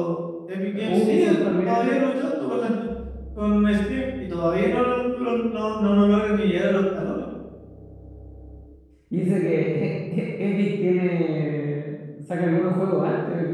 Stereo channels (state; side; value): identical; both; correlation 1.00